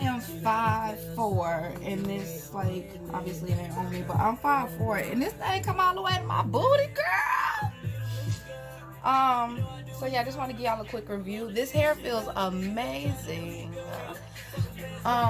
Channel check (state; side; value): identical; both; correlation 1.00